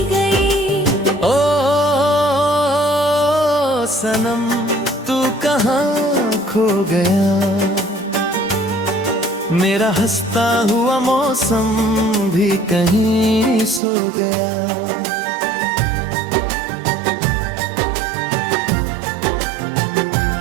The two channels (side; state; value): left; drops out; at 13.8 s